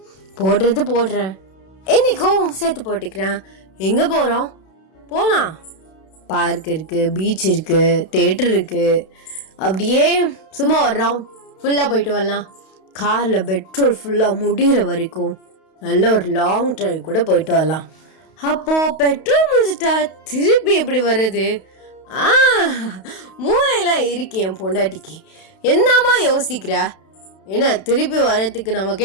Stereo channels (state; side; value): late; right; 32 ms